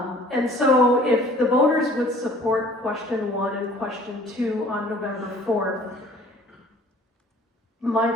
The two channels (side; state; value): both; normal; correlation 0.52